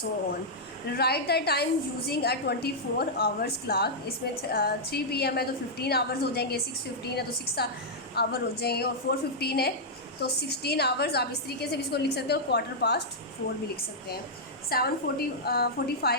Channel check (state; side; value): normal; both; correlation -0.07